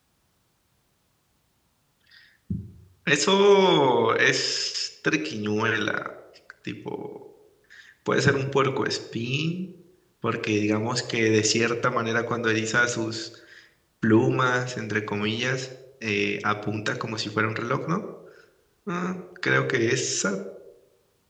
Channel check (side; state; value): both; identical; correlation 1.00